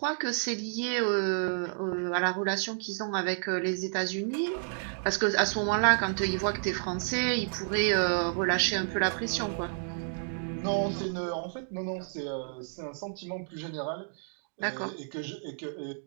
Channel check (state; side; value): silent; left; digital silence